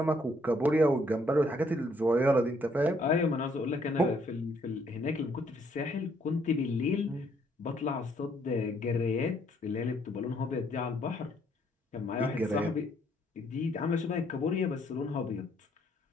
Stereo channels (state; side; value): normal; both; correlation 0.68